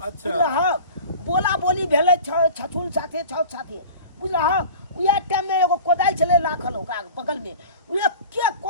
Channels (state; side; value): inverted; both; correlation -0.39